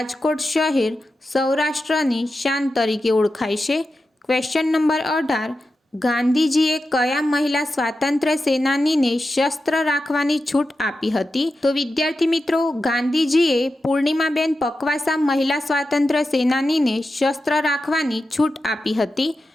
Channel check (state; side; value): normal; both; correlation 0.91